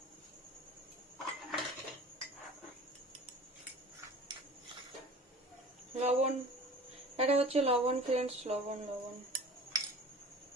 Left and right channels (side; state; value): both; normal; correlation 0.42